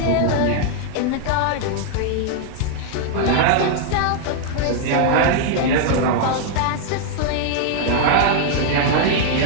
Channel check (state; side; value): different; both; correlation 0.00